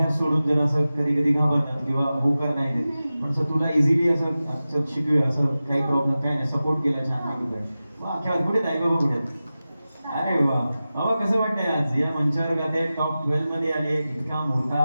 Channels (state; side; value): inverted; both; correlation -0.95